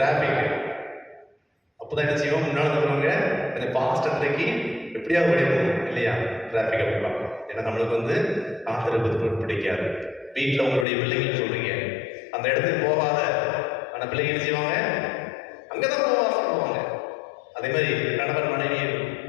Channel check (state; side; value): drops out; right; at 10.9 s